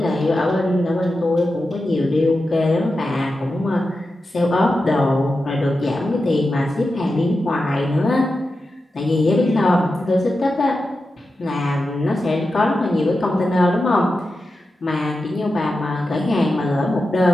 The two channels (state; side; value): normal; both; correlation 0.91